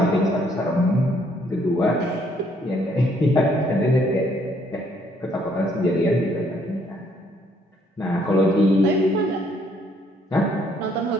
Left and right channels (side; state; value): both; normal; correlation 0.67